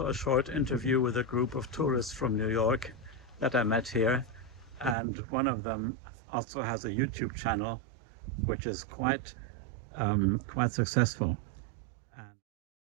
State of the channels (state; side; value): drops out; left; at 5.0 s